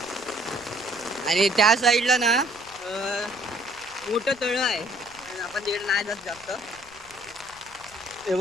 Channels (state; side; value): noise; left; rumble, 25 dB below the sound